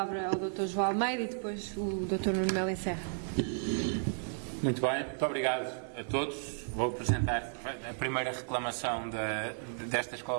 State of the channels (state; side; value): silent; left; digital silence